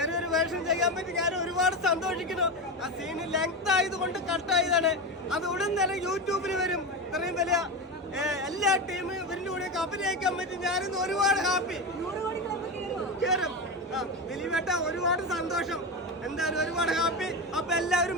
വേഷം ചെയ്യാൻ പറ്റി ഞാൻ ഒരുപാട് സന്തോഷിക്കുന്നു. ആ സീന് ലെങ്ത് ആയതുകൊണ്ട് കട്ടായതാണ്. അത് ഉടൻ തന്നെ യൂട്യൂബിൽ വരും. ഇത്രയും വലിയ എല്ലാ ടീമും ഇവരിന്റെ കൂടെ അഭിനയിക്കാൻ പറ്റി ഞാനിന്ന് ഒരുപാട് ഹാപ്പി. കയറും ദിലീപേട്ട, ഒരുപാട് സന്തോഷം. എന്തായാലും ഒരുപാട് ഹാപ്പി. അപ്പൊ എല്ലാവരും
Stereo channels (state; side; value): normal; both; correlation 0.18